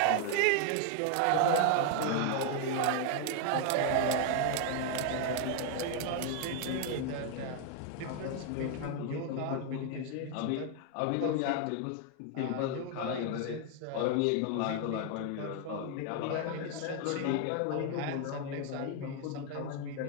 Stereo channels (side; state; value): both; different; correlation 0.00